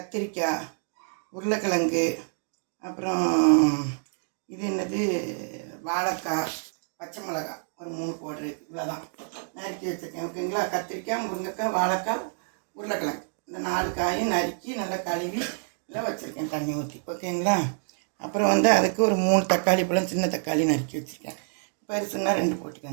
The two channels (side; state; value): left; silent; 60 dB below the other